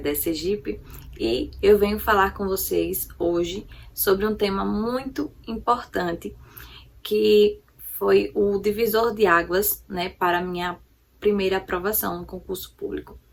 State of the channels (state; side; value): identical; both; correlation 1.00